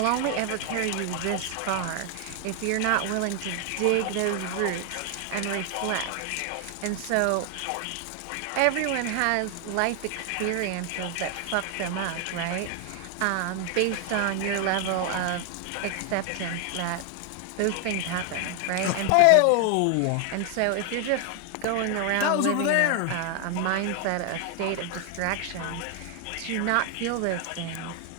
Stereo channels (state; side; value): different; both; correlation 0.00